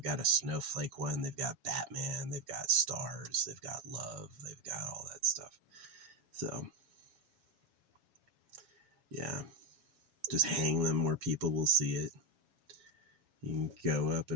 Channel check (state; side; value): late; left; 7.2 ms